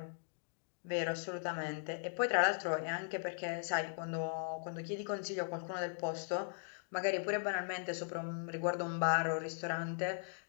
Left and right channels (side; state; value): right; silent; digital silence